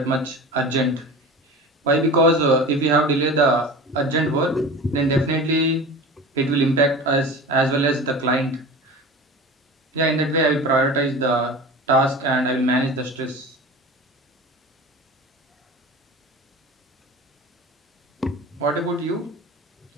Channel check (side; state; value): both; normal; correlation 0.34